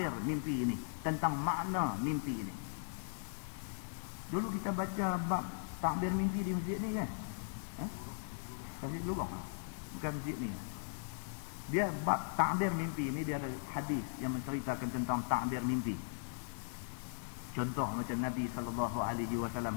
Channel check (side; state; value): right; silent; digital silence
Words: mimpi ini, tentang makna mimpi ini. Dulu kita baca bab takbir mimpi di masjid ni kan? Masjid Lubang. Bukan masjid ni. Dia bab takbir mimpi ni, dia ada hadis yang menceritakan tentang takbir mimpi. Contoh macam Nabi